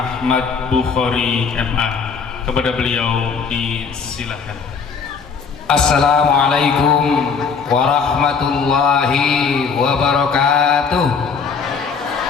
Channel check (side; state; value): right; quieter; 5.7 dB